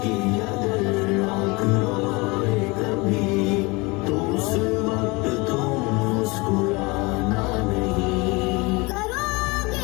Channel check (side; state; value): right; quieter; 25.7 dB